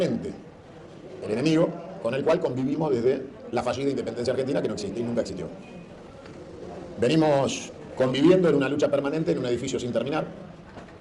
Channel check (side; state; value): both; identical; correlation 1.00